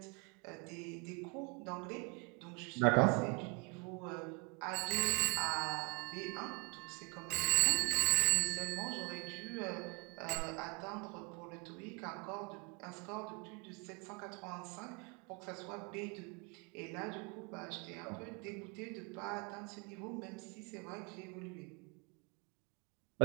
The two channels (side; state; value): left; quieter; 32.5 dB